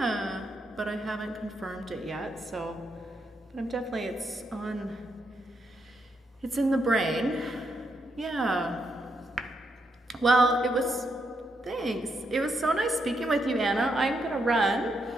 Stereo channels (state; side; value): normal; both; correlation 0.80